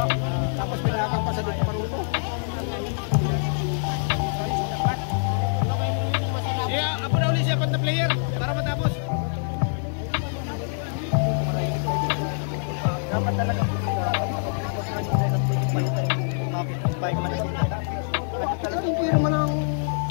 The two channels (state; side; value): silent; right; 62 dB below the other